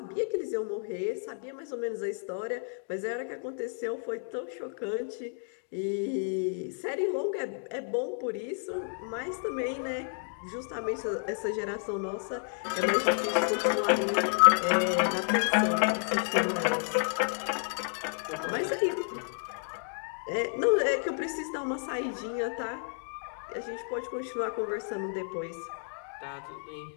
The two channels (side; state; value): right; silent; 57 dB below the other